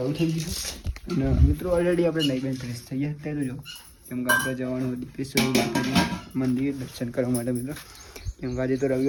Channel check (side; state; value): both; identical; correlation 1.00